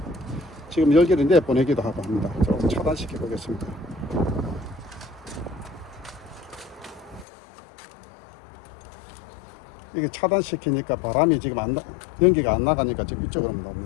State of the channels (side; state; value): right; drops out; at 7.2 s